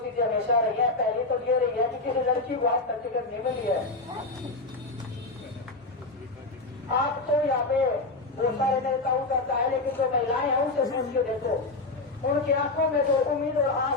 चीजें हमेशा रही है। पहली तो ये रही है कि किसी लड़की को आज तक टिकट नहीं मिली है। आप तो यहाँ पे बहुत सारे नेताओं करता है, लेकिन जो महिलाएं हैं उनसे पूछ के देखो, उनकी आंखों में जो उम्मीद और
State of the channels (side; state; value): right; quieter; 3.3 dB